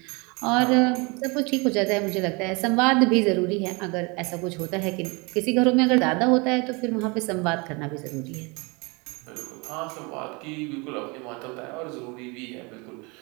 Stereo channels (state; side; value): quieter; left; 28.4 dB